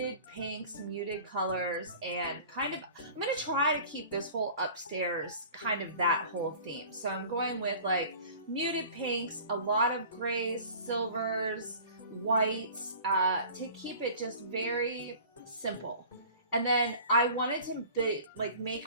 pinks, muted colors, and kind of, I'm going to try to keep this whole upstairs kind of that whole theme. So I'm going with like muted pinks, a lot of grays, silvers, whites, to keep it just very simple. And then I wanted to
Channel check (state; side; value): inverted; both; correlation -0.44